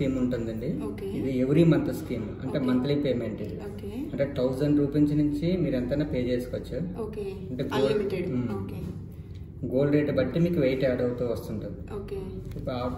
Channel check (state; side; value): identical; both; correlation 1.00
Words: ఉంటుందండి. ఇది ఎవ్రీ మంత్ స్కీమ్, అంటే మంత్లీ పేమెంట్. ఇది అంటే 1000 రూపీస్ నుంచి మీరు ఎంతైనా పే చేసుకోవచ్చు. అంటే గోల్డ్ రేట్ బట్టి మీకు వెయిట్ యాడ్ అవుతూ వస్తుంటుంది. ఇప్పుడు